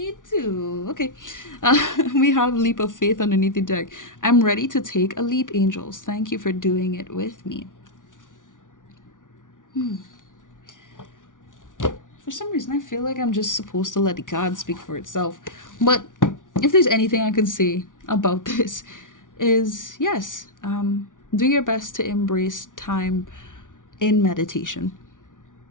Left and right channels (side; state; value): right; late; 0.88 ms